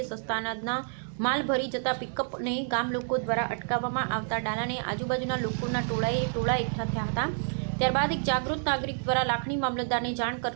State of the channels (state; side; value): silent; left; 59 dB below the other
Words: સસ્તા અનાજના માલ ભરી જતા પિકઅપને ગામ લોકો દ્વારા અટકાવવામાં આવતા ડાલાને આજુબાજુના લોકોના ટોળા એકઠા થયા હતા। ત્યારબાદ એક જાગૃત નાગરિક દ્વારા લાખણી મામલતદારને જાણ